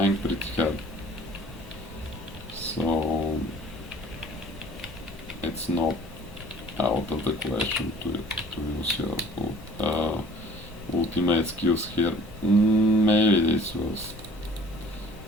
pretty hard. So it's not out of the question to use your ultimate skills here. Maybe this was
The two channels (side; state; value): both; normal; correlation 0.51